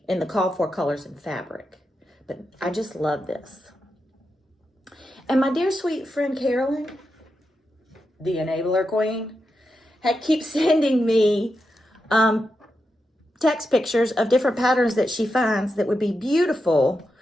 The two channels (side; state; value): both; normal; correlation 0.87